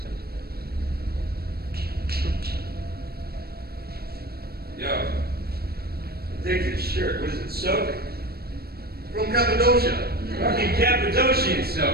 Yo, take this shirt. What is it, soak? From Cappadocia. Fucking Cappadocian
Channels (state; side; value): late; left; 0.45 ms